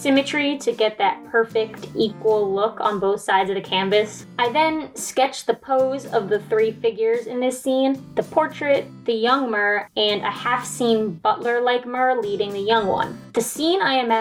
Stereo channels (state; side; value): identical; both; correlation 1.00